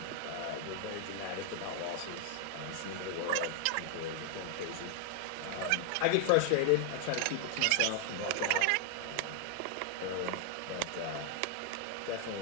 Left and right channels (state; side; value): different; both; correlation 0.00